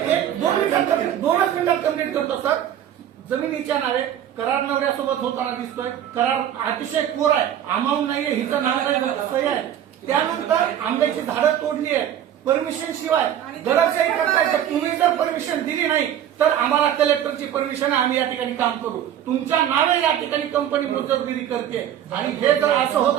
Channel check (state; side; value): quieter; left; 10.5 dB